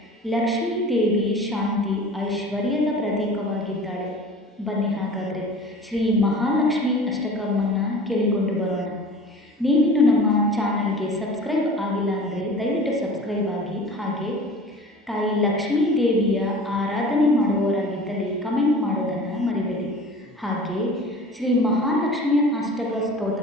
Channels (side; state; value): both; normal; correlation 0.41